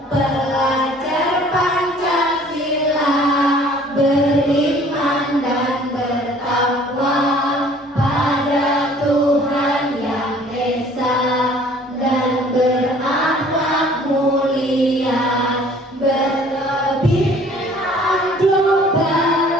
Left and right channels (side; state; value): both; normal; correlation 0.53